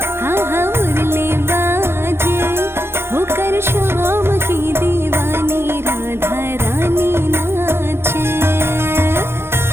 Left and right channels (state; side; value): late; left; 0.12 ms